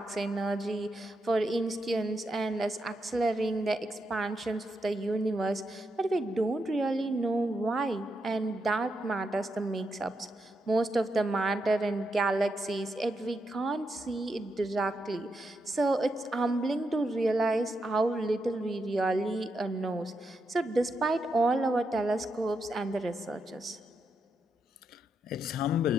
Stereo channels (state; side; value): normal; both; correlation 0.83